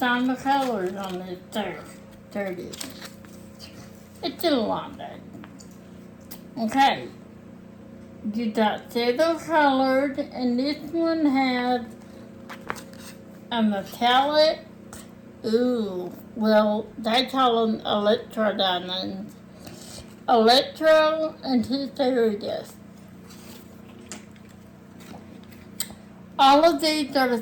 the colors on this. There it is. It's in a long day. Okay. You got silver colored, and this one has a metallic. Ooh, well, they call them electro diamonds. Electro and two fairy dust. All of these are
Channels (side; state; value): both; identical; correlation 1.00